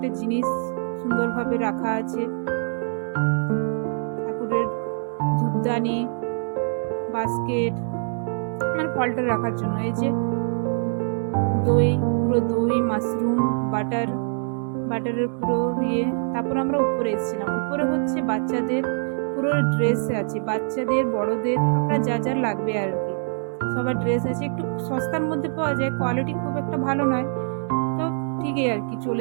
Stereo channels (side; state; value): left; silent; 62 dB below the other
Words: জিনিস সুন্দরভাবে রাখা আছে, ঠাকুরের ধূপদানি, বাস্কেট, মানে ফলটা রাখার জন্য। এই যে পুরো দই, মাশরুম, বাটারের পুরো ইয়ে। তারপর আমরা উপরে এসেছিলাম। উপরে হচ্ছে বাচ্চাদের পুরো ড্রেস আছে, বাচ্চাদের বড়দের আপনার যা লাগবে আর কি সবার ড্রেস আছে। একটু সস্তার মধ্যে পাওয়া যায়, কোয়ালিটি খুব একটা ভালো নয়, তো ঠিকই আর কি